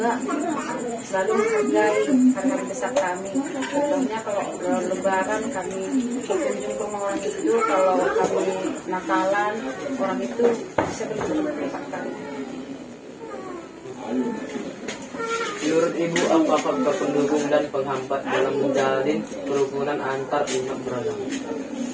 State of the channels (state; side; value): identical; both; correlation 1.00